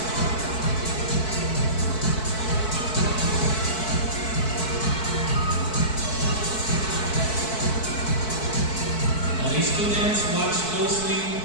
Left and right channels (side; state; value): right; late; 4.6 ms